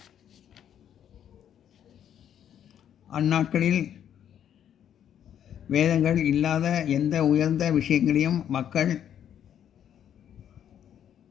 அந்நாட்களில் வேதங்கள் இல்லாத எந்த உயர்ந்த விஷயங்களையும் மக்கள்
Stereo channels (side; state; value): right; quieter; 9.7 dB